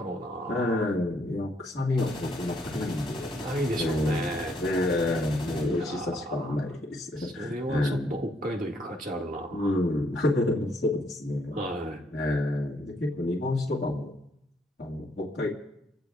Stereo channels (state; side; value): normal; both; correlation 0.70